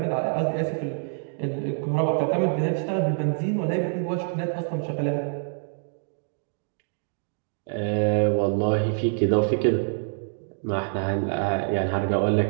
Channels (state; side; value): silent; left; digital silence